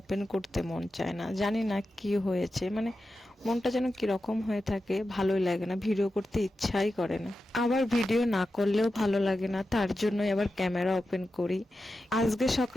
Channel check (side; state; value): both; normal; correlation 0.91